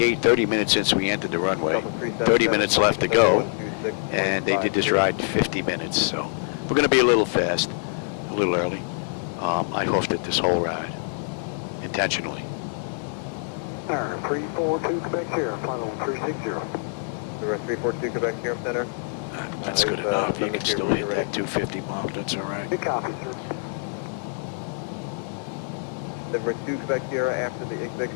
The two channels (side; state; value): right; silent; 57 dB below the other